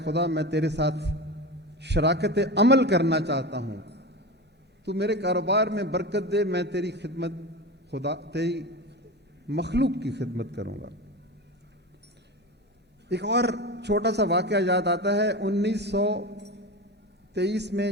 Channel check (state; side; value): normal; both; correlation 0.25